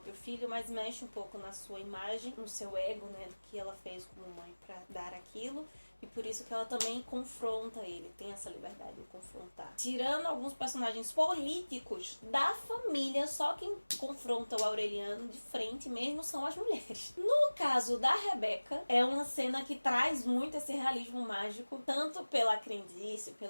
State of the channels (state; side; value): inverted; both; correlation -1.00